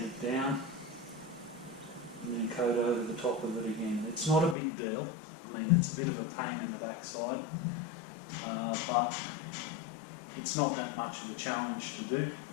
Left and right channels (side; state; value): right; drops out; at 4.5 s